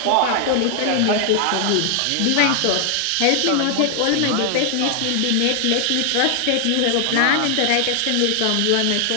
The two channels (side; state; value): both; different; correlation 0.00